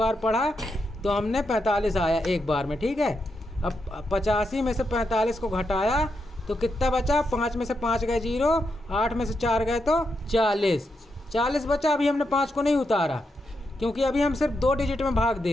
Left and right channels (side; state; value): both; normal; correlation 0.83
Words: पढ़ा तो हमने 45 आया 1 बार में, ठीक है। अब 85 में से 45 को घटाया तो कितना बचा? 5 में से 5 गए 0, 8 में से 4 गए तो 40 बचा। अभी हमने 5 को नहीं उतारा, क्योंकि अभी हम सिर्फ 2 डिजिट में भाग